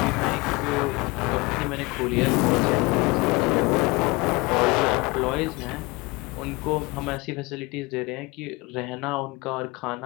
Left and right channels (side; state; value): right; quieter; 24.3 dB